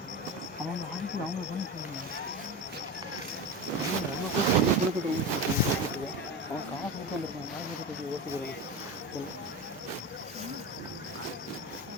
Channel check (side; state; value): both; normal; correlation 0.24